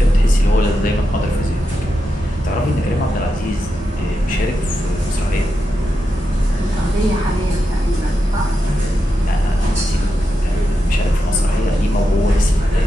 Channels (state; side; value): normal; both; correlation 0.87